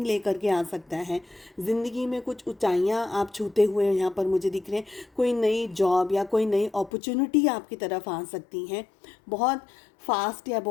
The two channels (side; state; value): right; drops out; at 6.9 s